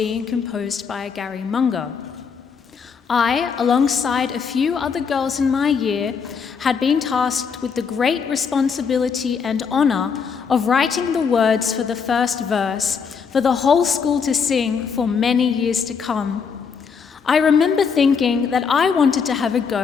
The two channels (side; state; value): right; quieter; 6.1 dB